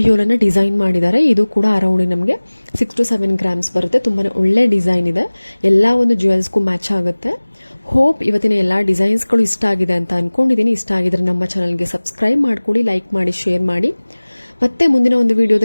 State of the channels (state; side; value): inverted; both; correlation -1.00